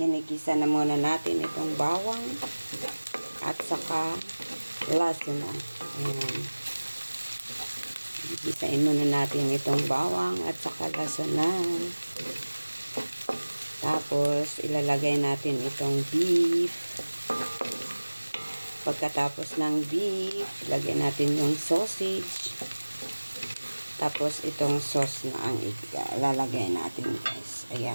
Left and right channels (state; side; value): inverted; both; correlation -1.00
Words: na muna natin itong bawang at saka lasuna. Ayan. Igisain muna natin itong bawang at saka lasuna. Tapos, ilalagay natin itong beef. Pagkatapos ng beef, ilagay natin yung sausage. Tapos, itong sauce na ang ilalagay natin, guys.